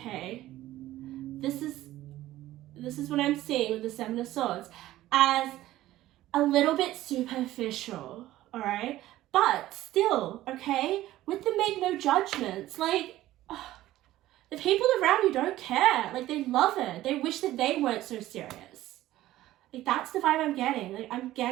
This is what I'm seeing with the Seven of Swords, as a little bit superficial, all right? But still, okay, with the make no judgments, like, the people around you don't care. Like, they love it. They wish that they weren't so serious. Like, that's the vibe I'm getting. Like, I'm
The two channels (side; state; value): left; quieter; 15.2 dB